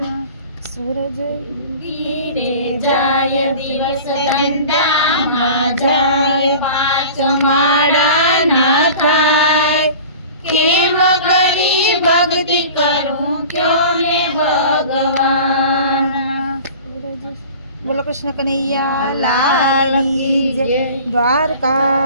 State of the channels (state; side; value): inverted; both; correlation -0.40